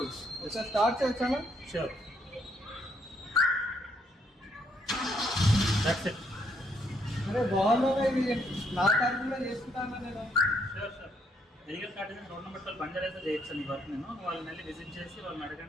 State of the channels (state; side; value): normal; both; correlation 0.72